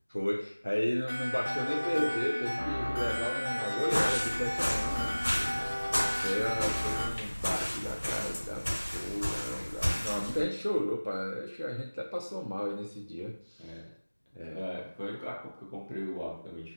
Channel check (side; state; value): both; inverted; correlation -1.00